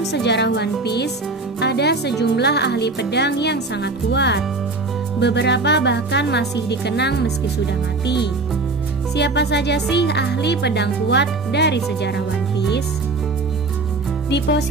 sejarah One Piece, ada sejumlah ahli pedang yang sangat kuat. Beberapa bahkan masih dikenang meski sudah mati. Siapa saja sih ahli pedang kuat dari sejarah One Piece? Di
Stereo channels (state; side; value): quieter; left; 3.5 dB